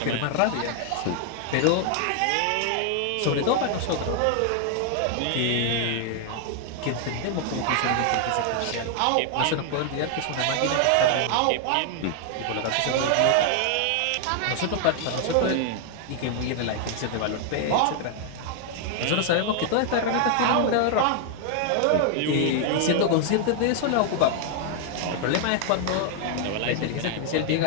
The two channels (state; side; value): different; both; correlation 0.00